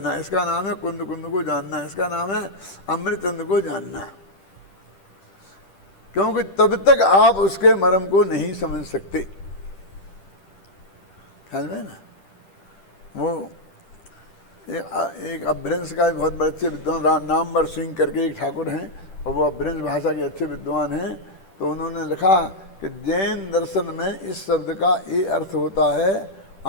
इसका नाम है कुंद कुंद को जानना, इसका नाम है अमृतचंद को जानना। क्योंकि तब तक आप उसके मर्म को नहीं समझ सकते। ख्याल में ना, वो एक अभ्रंश का बहुत बड़े अच्छे विद्वान नामवर सिंह करके एक ठाकुर हैं, और वो अभ्रंश भाषा के अच्छे विद्वान हैं। तो उन्होंने लिखा कि जैन दर्शन में इस शब्द का ये अर्थ होता है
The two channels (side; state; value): right; late; 10 ms